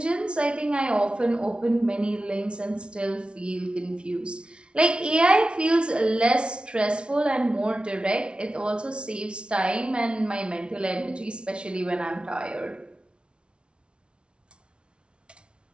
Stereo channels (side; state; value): left; late; 0.058 ms